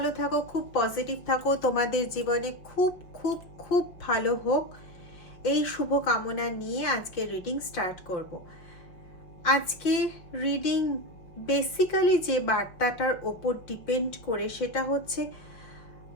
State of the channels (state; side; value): late; right; 5.3 ms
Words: থাকো, খুব পজিটিভ থাকো, তোমাদের জীবনে খুব খুব খুব ভালো হোক, এই শুভ কামনা নিয়ে আজকে রিডিং স্টার্ট করব। আজকে রিডিং বেসিক্যালি যে বার্তাটার ওপর ডিপেন্ড করে সেটা হচ্ছে